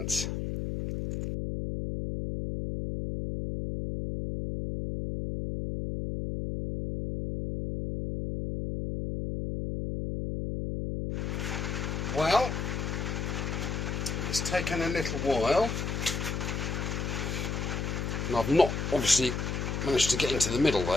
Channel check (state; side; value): noise; left; hum, 2 dB below the sound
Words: Well, it's taken a little while, and I've not obviously managed to get into the middle